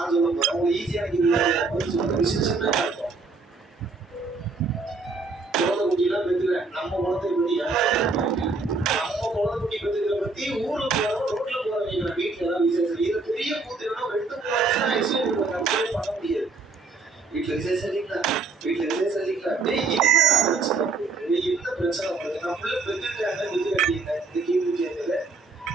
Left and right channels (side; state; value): left; quieter; 3.9 dB